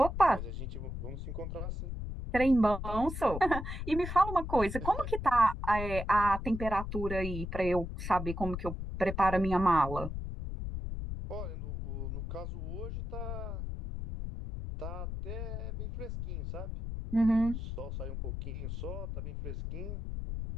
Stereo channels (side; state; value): left; noise; rumble, 5 dB below the sound